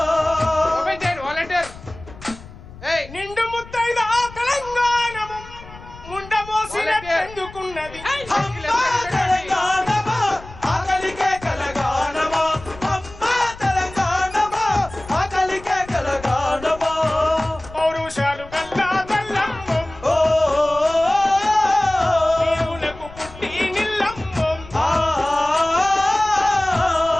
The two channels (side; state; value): left; noise; rumble, 17 dB below the sound